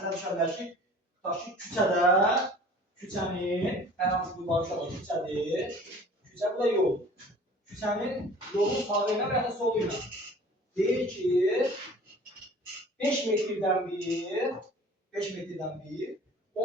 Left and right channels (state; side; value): normal; both; correlation 0.47